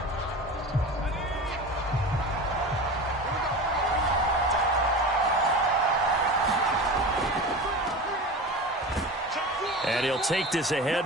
And he'll take this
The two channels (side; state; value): both; normal; correlation 0.31